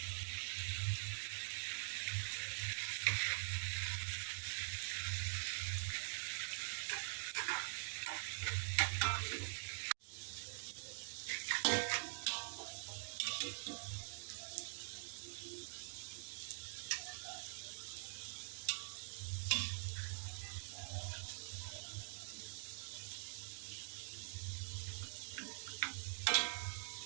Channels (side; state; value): left; silent; digital silence